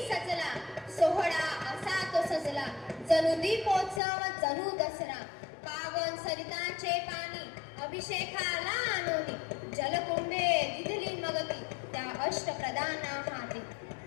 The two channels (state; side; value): drops out; right; at 4.0 s